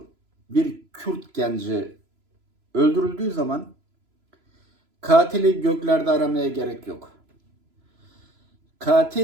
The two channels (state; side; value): late; left; 3.0 ms